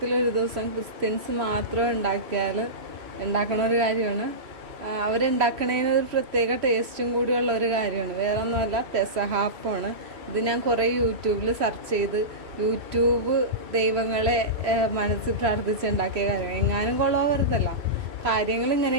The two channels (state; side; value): late; left; 3.0 ms